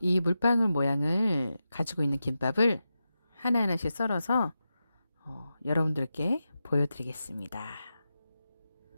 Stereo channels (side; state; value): both; inverted; correlation -0.90